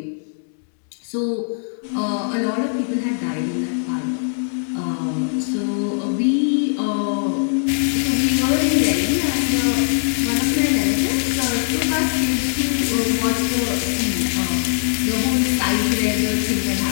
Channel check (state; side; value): silent; right; digital silence